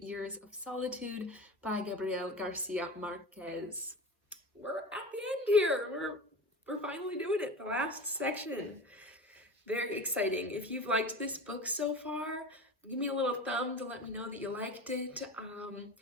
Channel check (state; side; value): normal; both; correlation 0.31